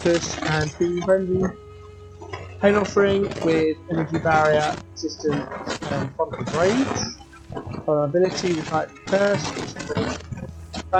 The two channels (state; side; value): identical; both; correlation 1.00